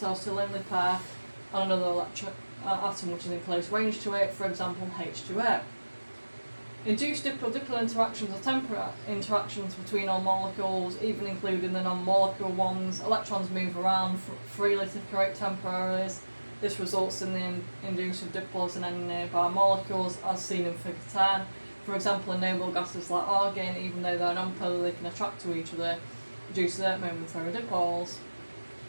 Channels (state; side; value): inverted; both; correlation -1.00